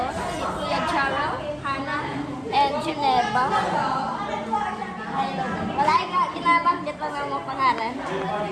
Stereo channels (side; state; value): both; identical; correlation 1.00